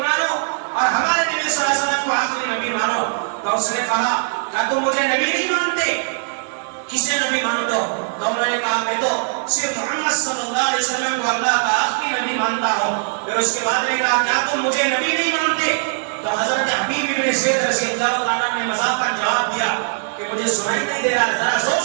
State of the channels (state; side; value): silent; left; digital silence